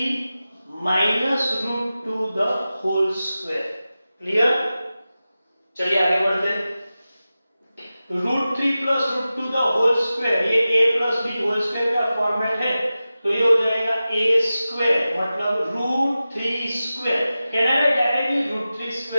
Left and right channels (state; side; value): inverted; both; correlation -0.94